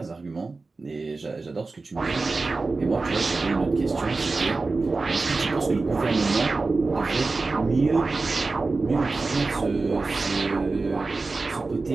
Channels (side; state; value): left; quieter; 3.7 dB